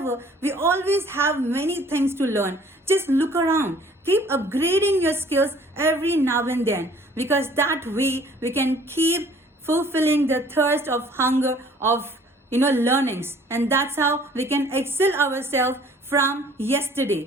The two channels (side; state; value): both; normal; correlation 0.55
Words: we always have many things to learn. Just look around. Keep upgrading your skills every now and then, because that way we can keep fulfilling the thirst of hunger of learnings, and that's how we can excel ourselves from